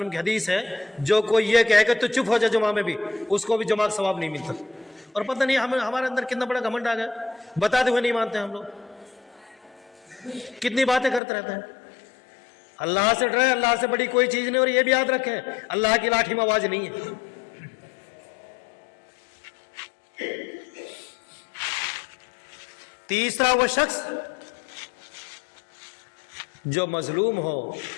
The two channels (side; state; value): right; drops out; at 11.2 s